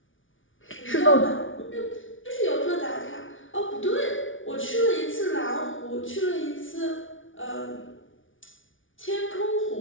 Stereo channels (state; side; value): late; right; 0.57 ms